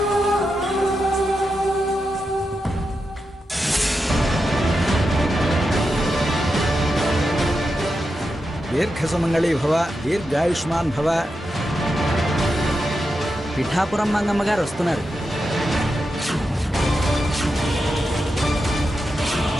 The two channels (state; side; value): normal; both; correlation 0.88